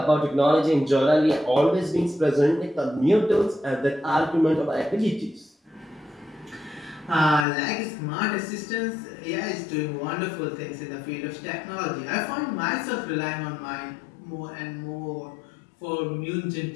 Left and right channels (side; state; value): right; drops out; at 7.5 s